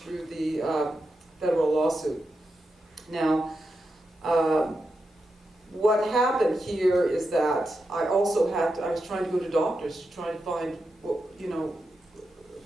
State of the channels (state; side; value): normal; both; correlation 0.88